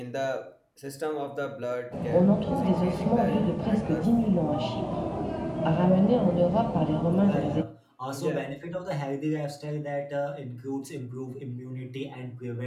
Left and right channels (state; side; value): identical; both; correlation 1.00